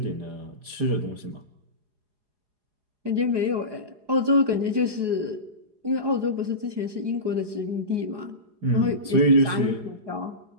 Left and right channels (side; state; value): left; late; 4.8 ms